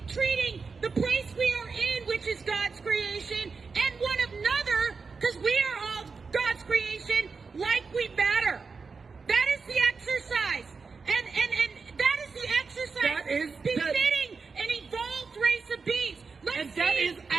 treating the place we are in, which is God's creation, and one another, because we are all God's creation, like we matter. That is the exercise. And that is the exercise That is befitting an evolved race of beings. Let's see if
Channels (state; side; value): quieter; left; 4.8 dB